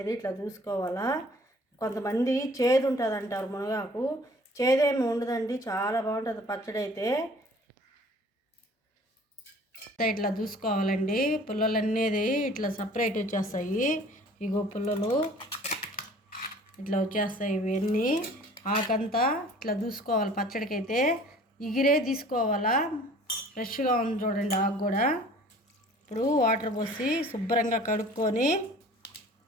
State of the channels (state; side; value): normal; both; correlation 0.50